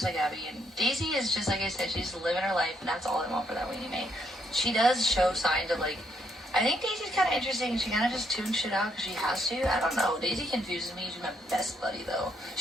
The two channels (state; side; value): normal; both; correlation 0.74